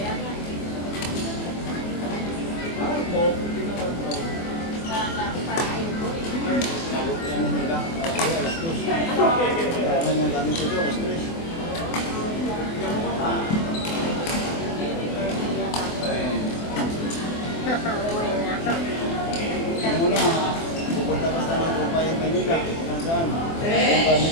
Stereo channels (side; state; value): right; late; 24 ms